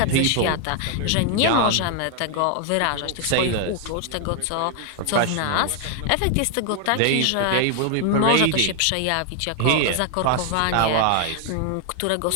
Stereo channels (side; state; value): both; different; correlation 0.00